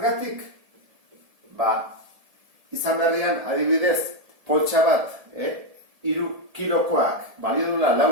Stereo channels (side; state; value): left; late; 1.7 ms